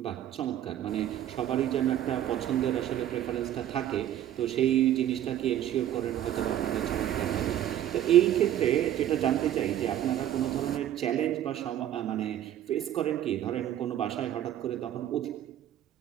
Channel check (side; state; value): left; quieter; 11.6 dB